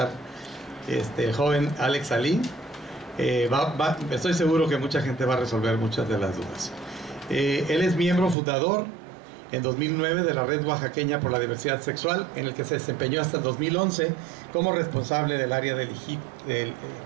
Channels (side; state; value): left; drops out; at 8.3 s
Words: el joven Alex Alí, estoy seguro que mucha gente va a resolver muchas de las dudas. Él es miembro fundador en 2009 de la Red Oaxaqueña por la Diversidad Sexual, en el que se desempeñó hasta 2011 como responsable del área de